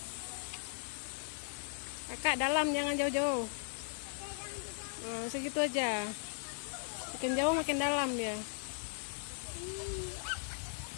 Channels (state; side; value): silent; right; digital silence